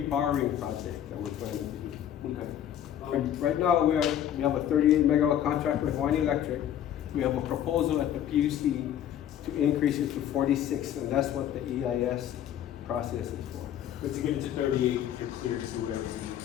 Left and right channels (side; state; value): right; quieter; 10.5 dB